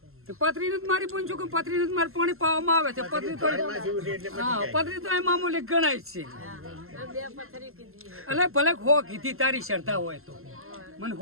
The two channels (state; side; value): late; left; 0.62 ms